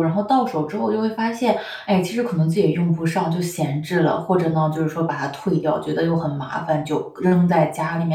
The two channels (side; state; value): both; identical; correlation 1.00